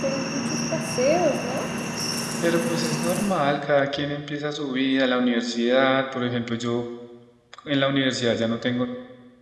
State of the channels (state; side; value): identical; both; correlation 1.00